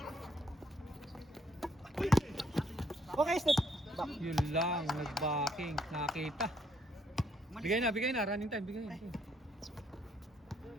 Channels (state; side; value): normal; both; correlation 0.69